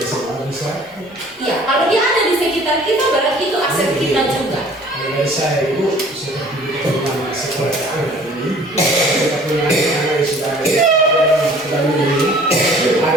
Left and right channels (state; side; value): normal; both; correlation 0.52